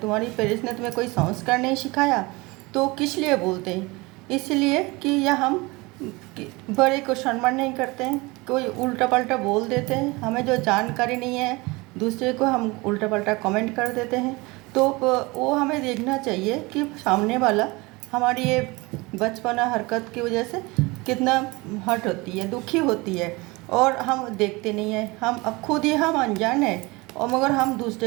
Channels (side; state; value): left; quieter; 24.0 dB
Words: पेरेंट्स ने तुम्हें कोई संस्कार नहीं सिखाया। तो किस लिए बोलते हैं? इसलिए कि या हम बड़े को सम्मान नहीं करते हैं, कोई उल्टा पल्टा बोल देते हैं, हमें जो जानकारी नहीं है दूसरे को हम उल्टा पल्टा कमेंट कर देते हैं। तो वो हमें देखना चाहिए कि सामने वाला हमारी ये बचपना हरकत की वजह से कितना हर्ट होती है, दुखी होती है, और हम देखते नहीं हैं। हम अब खुद ही हम अनजान हैं और मगर हम